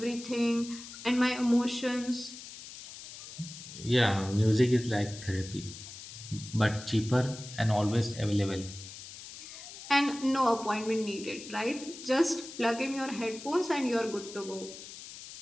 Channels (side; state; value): left; noise; hiss, 13 dB below the sound